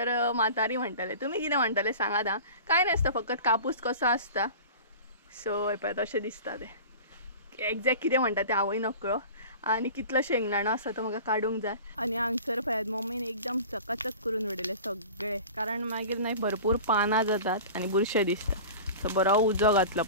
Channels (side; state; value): both; inverted; correlation -0.38